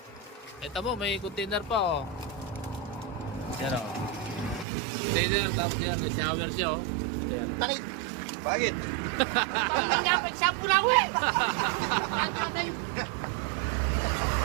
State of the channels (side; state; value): left; drops out; at 4.7 s